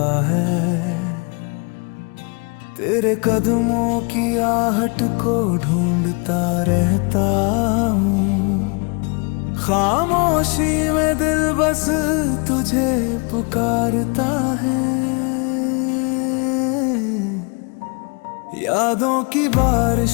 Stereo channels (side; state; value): right; quieter; 33.6 dB